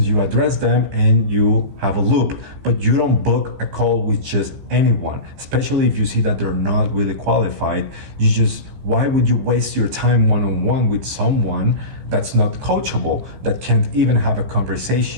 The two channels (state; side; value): late; left; 16 ms